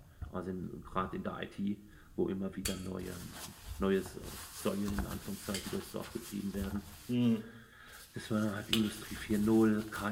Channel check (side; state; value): both; identical; correlation 1.00